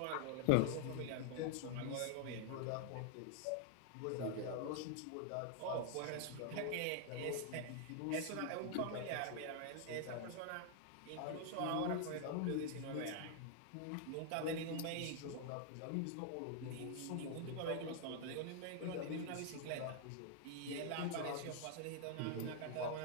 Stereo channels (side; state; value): both; different; correlation 0.00